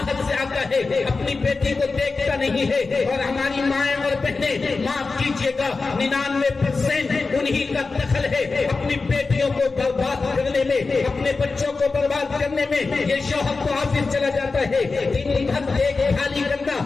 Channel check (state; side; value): quieter; right; 4.1 dB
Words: سے آتا ہے، اپنی بیٹی کو دیکھتا نہیں ہے. اور ہماری مائیں اور بہنیں، معاف کیجیے گا، 99% انہی کا دخل ہے اپنی بیٹیوں کو برباد کرنے میں، اپنے بچوں کو برباد کرنے میں. یہ شوہر تو آفس چلا جاتا ہے، دن بھر دیکھ بھالی کرنا،